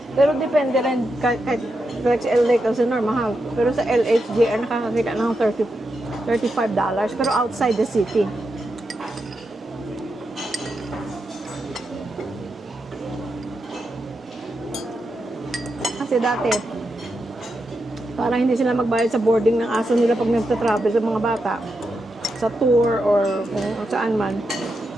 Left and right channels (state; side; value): normal; both; correlation 0.86